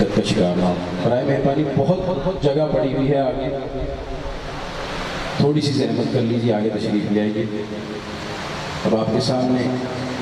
کا شکار نہ ہو. برائے مہربانی بہت جگہ پڑی ہوئی ہے آگے, تھوڑی سی زحمت کر لیجیے, آگے تشریف لے آئیے. اب آپ کے سامنے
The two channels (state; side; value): identical; both; correlation 1.00